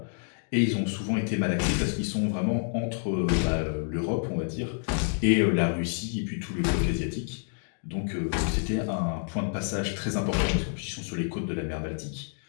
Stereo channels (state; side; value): silent; right; 59 dB below the other